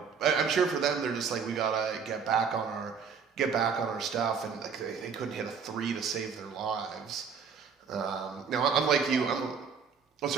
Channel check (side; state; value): left; quieter; 6.2 dB